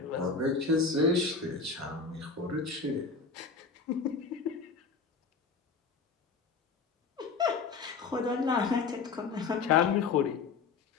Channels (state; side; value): quieter; right; 4.9 dB